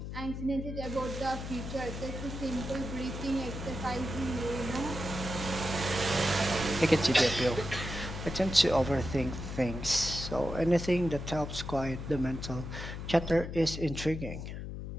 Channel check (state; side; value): noise; left; hum, 7 dB below the sound